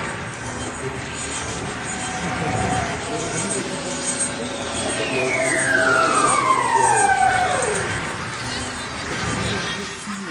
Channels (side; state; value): both; identical; correlation 1.00